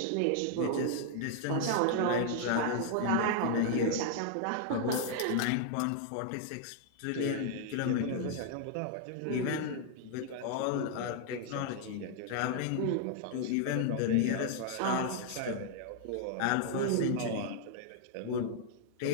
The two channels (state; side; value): different; both; correlation 0.00